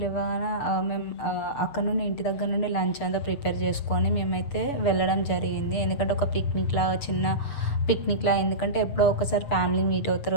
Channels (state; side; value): late; right; 7.0 ms